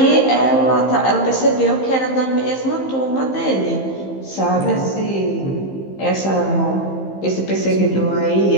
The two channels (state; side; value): late; right; 15 ms